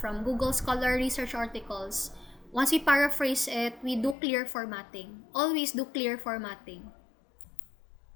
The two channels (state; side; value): drops out; right; at 4.2 s